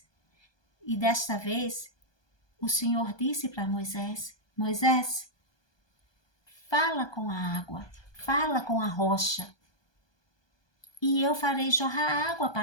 E desta vez, o Senhor disse para Moisés: Moisés, fala com a água, fala com a rocha, e eu farei jorrar água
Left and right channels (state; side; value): late; right; 1.2 ms